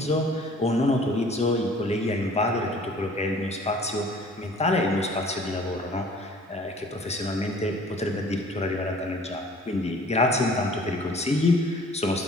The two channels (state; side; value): normal; both; correlation 0.51